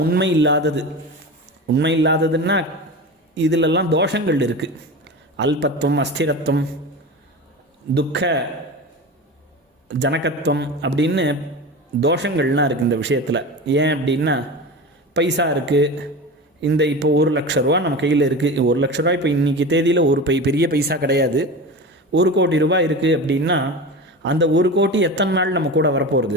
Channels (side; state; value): both; normal; correlation 0.28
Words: உண்மை இல்லாதது. உண்மை இல்லாததுன்னா இதிலெல்லாம் தோஷங்கள் இருக்குது. அல்பத்துவம், அஸ்திரத்துவம், துக்க ஜனகத்துவம் அப்படின்னு தோஷங்கள்லாம் இருக்குது இந்த விஷயத்தில். ஏன் அப்படின்னா பைசா இருக்குது, இந்த இப்போ 1,00,000 ரூபா நம்ம கையில் இருக்குது. 1,00,000 ரூபா இப்போ இன்றைக்கி தேதியில் ஒரு பெரிய பைசா கிடையாது. 1 கோடி ரூபாய் இருக்குது அப்படின்னா அந்த 1 கோடி எத்தனை நாள் நம்ம கூட